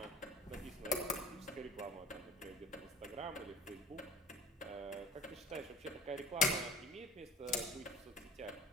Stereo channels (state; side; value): normal; both; correlation 0.41